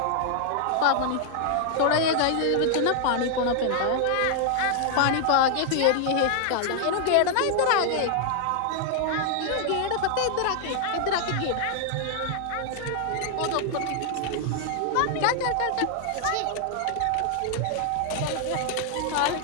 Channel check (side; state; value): both; different; correlation 0.00